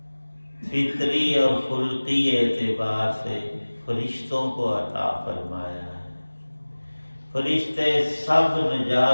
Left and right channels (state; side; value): inverted; both; correlation -1.00